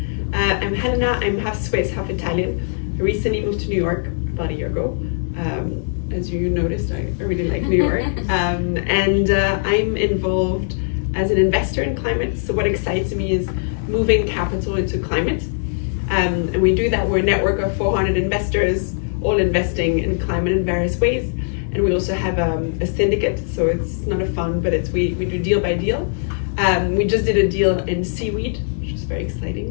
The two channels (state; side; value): silent; right; digital silence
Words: I'm Helena. I'm half Swiss, half Italian. I recently moved to New York about a year ago. As you noticed, I really like New York. And I'm involved as an investor in climate. So what excites me is moving capital into climate. And we do that. We're a network of 400 investors, all investing in climate in various ways. And we also have a syndicate, so it's not a fund, but we do deal by deal. We just did a deal in seaweed, which was very